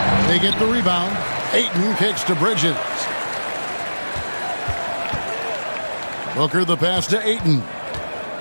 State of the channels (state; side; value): inverted; both; correlation -1.00